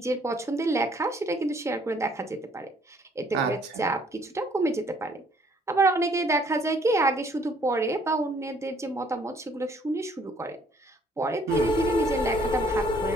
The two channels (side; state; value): both; normal; correlation 0.62